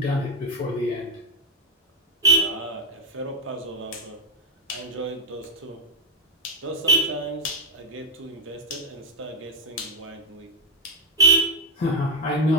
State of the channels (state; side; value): normal; both; correlation 0.06